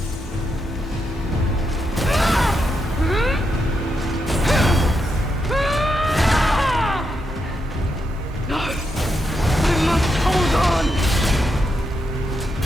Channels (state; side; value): normal; both; correlation 0.82